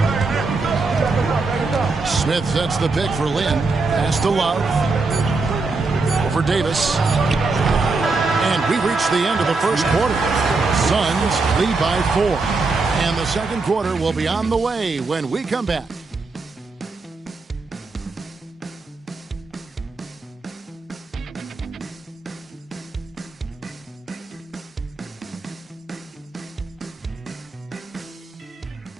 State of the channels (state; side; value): quieter; left; 3.8 dB